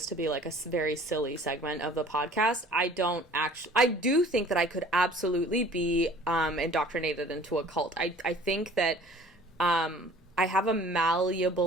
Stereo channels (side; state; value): both; normal; correlation 0.49